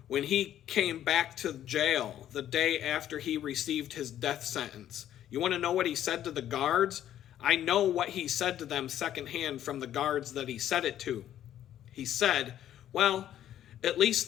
When he came back to jail the day after he received his death sentence, you want to know what he said to the guards? I know what he said to them secondhand from the guards that he said it to. He said, well, at least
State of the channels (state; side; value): quieter; right; 11.4 dB